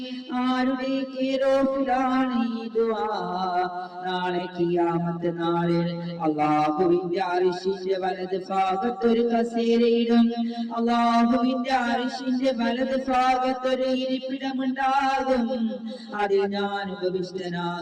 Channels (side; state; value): both; identical; correlation 1.00